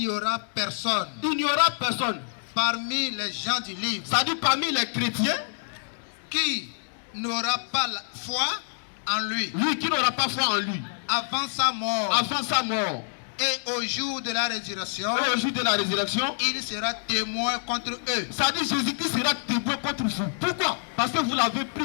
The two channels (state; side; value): silent; right; digital silence